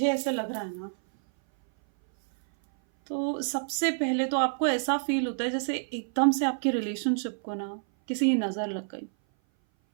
ऐसे लग रहा है ना, तो सबसे पहले तो आपको ऐसा फील होता है जैसे एकदम से आपके रिलेशनशिप को ना किसी की नज़र लग गई।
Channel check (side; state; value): left; silent; 58 dB below the other